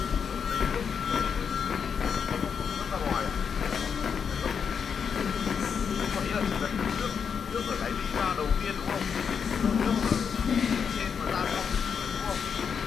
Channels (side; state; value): right; quieter; 6.7 dB